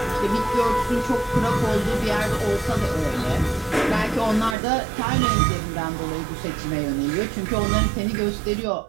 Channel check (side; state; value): left; drops out; at 4.5 s